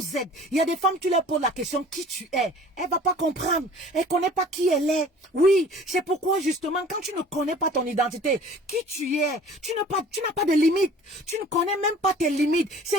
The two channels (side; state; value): both; normal; correlation 0.47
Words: êtes. Il y a des femmes, tu leur poses la question, qui tu es. Elle va pas comprendre. Elle connaît pas qui elle est. Oui, c'est pourquoi, justement, quand tu ne connais pas ton identité, qui tu es, tu n'as pas de limite. Tu ne connais même pas tes limites.